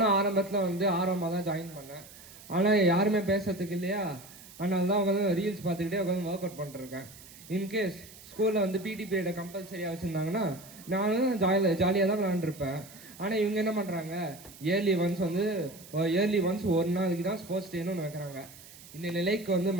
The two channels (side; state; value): right; noise; hiss, 19 dB below the sound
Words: ஆரம்பத்துல வந்து ஆர்வமாக தான் ஜாயின் பண்ணேன். ஆனா யாருமே பேசுறதுக்கு இல்லையா, அதனால தான் உட்காந்து ரீல்ஸ் பார்த்துக்கிட்டே உட்காந்து ஒர்க் அவுட் பண்ணிருக்கேன். இன்கேஸ் ஸ்கூலில் வந்து பிடி பீரியடை கம்பல்சரியாக வச்சுருந்தாங்கன்னா நானும் ஜாலியாக தான் விளாண்டுருப்பேன். ஆனால் இவங்க என்ன பண்ணுறாங்க, இயர்லி ஒன்ஸ் ஒரு நாளைக்கு தான் ஸ்போர்ட்ஸ் டேன்னு ஒன்று வைக்கிறாங்க. இந்த நிலைக்கு வந்து